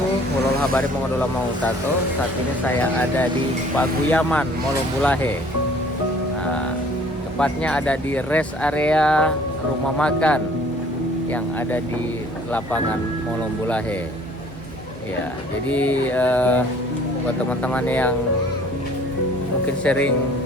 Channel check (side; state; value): both; normal; correlation 0.54